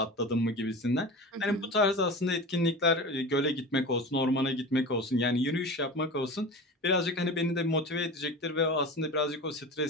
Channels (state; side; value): normal; both; correlation 0.31